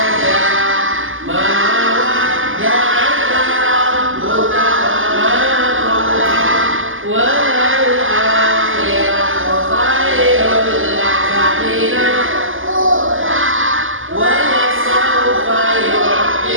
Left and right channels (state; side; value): late; left; 0.58 ms